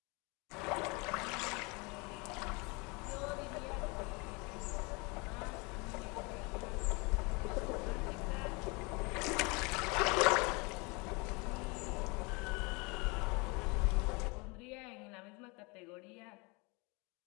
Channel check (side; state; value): right; quieter; 28.7 dB